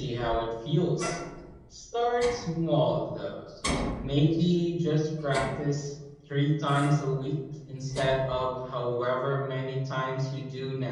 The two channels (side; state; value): both; identical; correlation 1.00